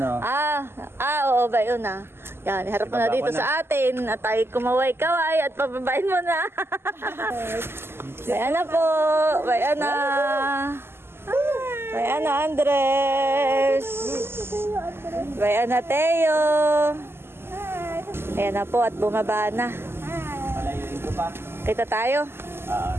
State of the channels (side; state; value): left; late; 0.12 ms